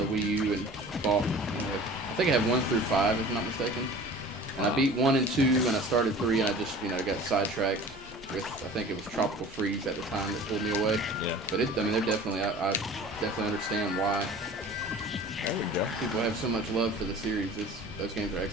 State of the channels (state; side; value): normal; both; correlation 0.43